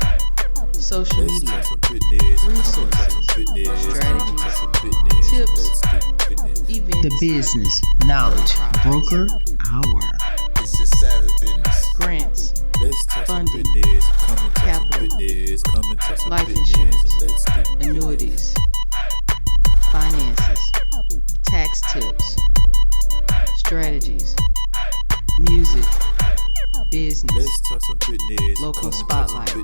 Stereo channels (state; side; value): inverted; both; correlation -1.00